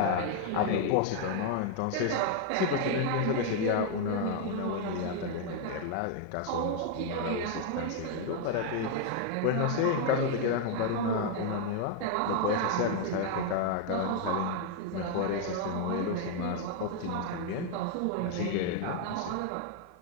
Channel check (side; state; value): both; different; correlation 0.00